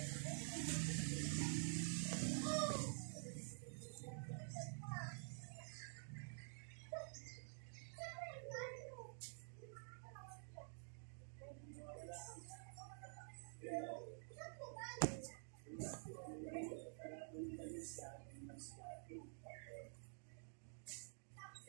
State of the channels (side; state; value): left; silent; digital silence